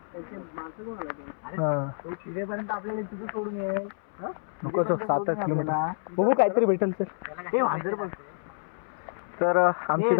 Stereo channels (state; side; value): silent; right; 59 dB below the other